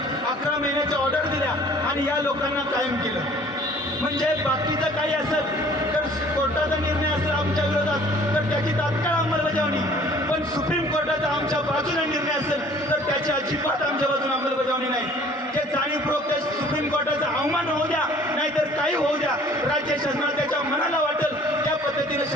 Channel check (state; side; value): normal; both; correlation 0.53